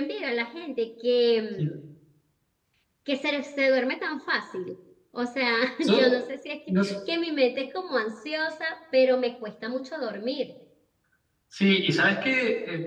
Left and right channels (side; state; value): both; identical; correlation 1.00